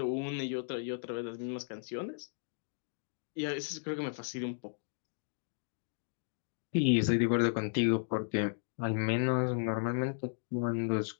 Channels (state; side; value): silent; right; digital silence